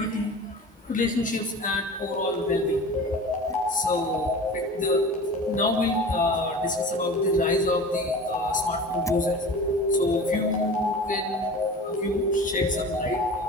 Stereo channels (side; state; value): both; normal; correlation 0.36